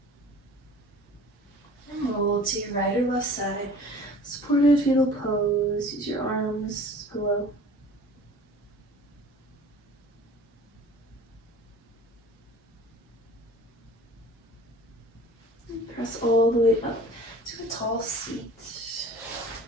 And roll to your right or left side. Supported fetal pose, use your arms as pillow. And press all the way up to a tall seat.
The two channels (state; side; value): normal; both; correlation 0.44